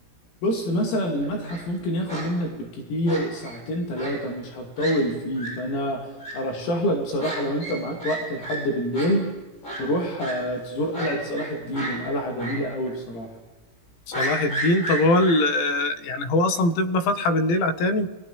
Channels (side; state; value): right; late; 17 ms